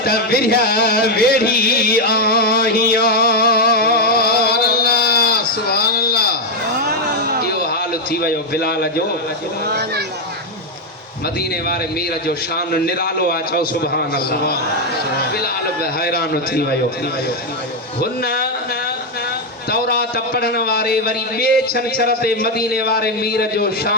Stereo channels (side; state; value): both; normal; correlation 0.03